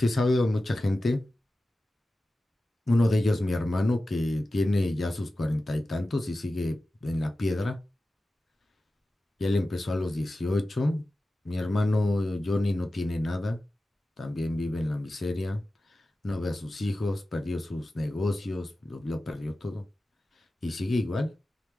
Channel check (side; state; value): both; normal; correlation 0.94